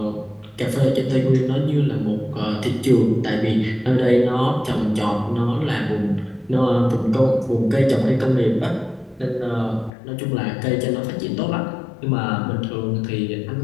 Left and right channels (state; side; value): drops out; right; at 9.9 s